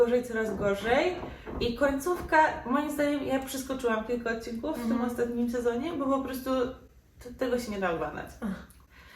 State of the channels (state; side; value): identical; both; correlation 1.00